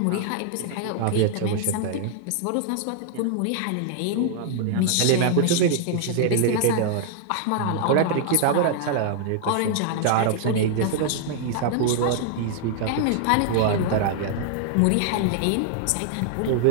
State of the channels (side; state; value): both; different; correlation -0.01